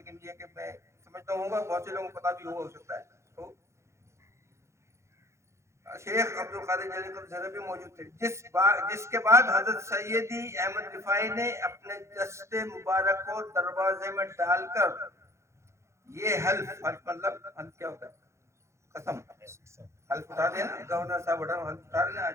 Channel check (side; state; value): left; late; 0.14 ms